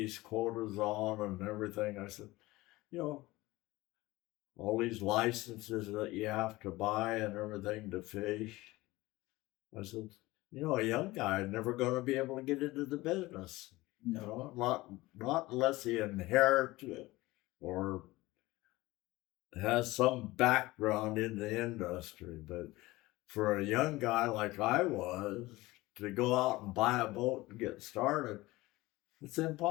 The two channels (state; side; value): quieter; right; 19.6 dB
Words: quotas on and everything, I said, you know, all these licenses that you have to buy and everything to fish. I said, you know, a young guy is never going to be able to get into the business. You know, not unless he inherits it or has some background in the industry. But for a young guy like I was, to go out and buy a boat and get started, it's